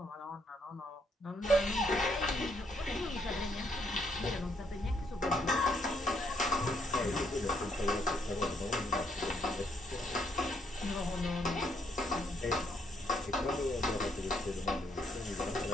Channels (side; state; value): both; normal; correlation 0.72